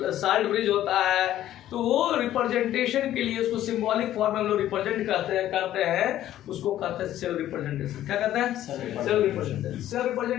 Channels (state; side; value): quieter; right; 12.7 dB